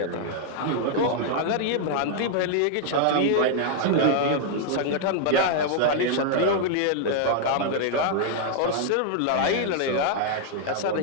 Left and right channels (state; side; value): different; both; correlation -0.01